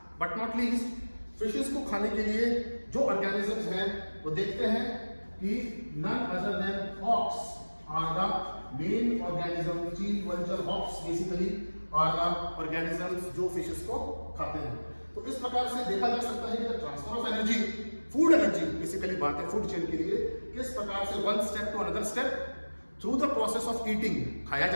but not least fishes को खाने के लिए जो ऑर्गेनिजम्स हैं वो देखते हैं कि none other than hawks are the main organism. चील, vulture, hawks basically are the organisms जो फिशेस को खाते हैं। तो इस प्रकार से देखा जा सकता है कि transfer of energy, food energy basically बात है फूड चेन के लिए, किस प्रकार से one step to another step through the process of eating, खाया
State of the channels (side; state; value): both; inverted; correlation -1.00